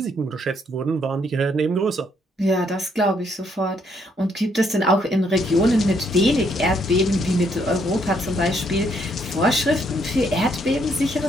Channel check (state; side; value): normal; both; correlation 0.71